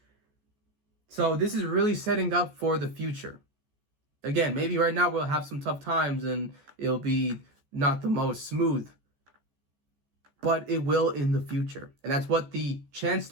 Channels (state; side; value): late; left; 14 ms